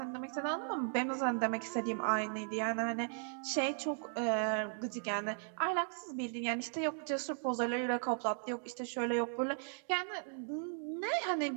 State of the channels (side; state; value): left; silent; 53 dB below the other